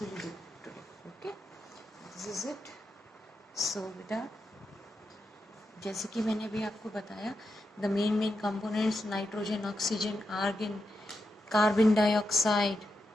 will do today. Okay, this is it. So बेटा, जैसे कि मैंने अभी आपको बताया, the main components nitrogen, oxygen, argon, carbon dioxide,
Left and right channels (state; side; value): normal; both; correlation 0.86